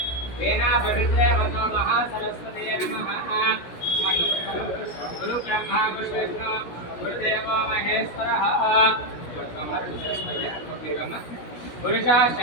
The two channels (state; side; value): late; right; 16 ms